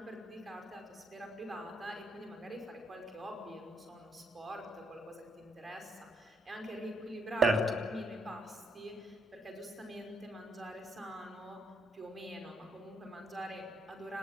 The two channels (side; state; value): both; normal; correlation 0.72